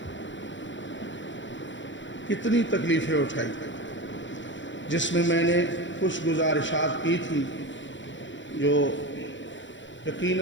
کتنی تکلیفیں اٹھائی، جس میں نے کچھ گزارشات کی تھی جو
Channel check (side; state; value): right; late; 0.54 ms